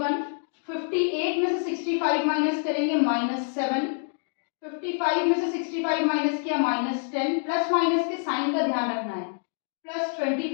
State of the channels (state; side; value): silent; right; 61 dB below the other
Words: 58 में से 65 माइनस करेंगे -7। 55 में से 65 माइनस किया -10। प्लस माइनस के साइन का ध्यान रखना है,